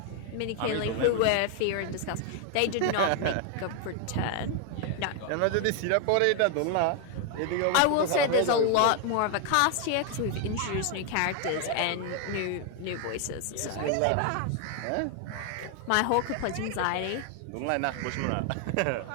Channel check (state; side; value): different; both; correlation 0.00